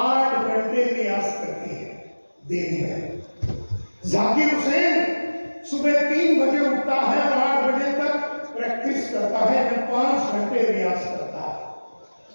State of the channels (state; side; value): inverted; both; correlation -1.00